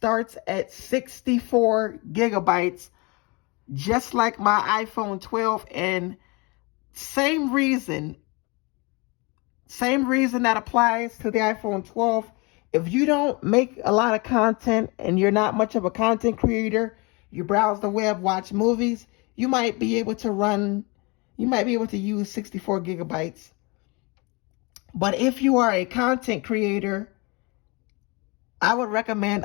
at 64 gigabytes, just like my iPhone 12, and same reason that applies to the iPhone 12. If you don't make a lot of content and you're not much of a content creator, you browse the web, watch movies, you might be able to use 64 gigabytes. But if you are a content creator, I would recommend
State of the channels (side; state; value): right; quieter; 28.0 dB